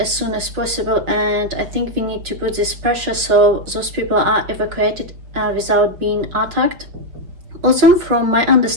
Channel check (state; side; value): late; left; 5.4 ms